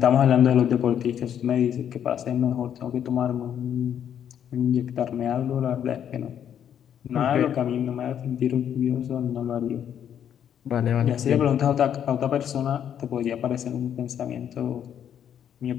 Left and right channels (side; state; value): right; quieter; 9.3 dB